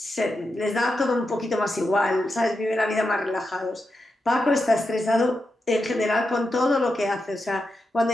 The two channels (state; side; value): normal; both; correlation 0.88